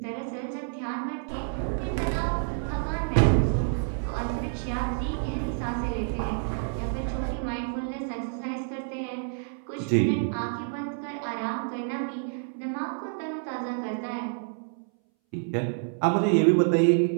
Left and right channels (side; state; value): left; silent; 59 dB below the other